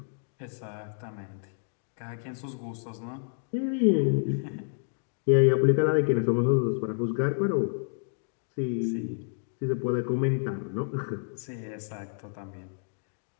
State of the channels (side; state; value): right; silent; digital silence